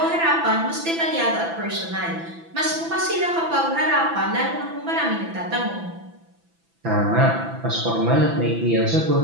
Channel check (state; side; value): late; left; 6.0 ms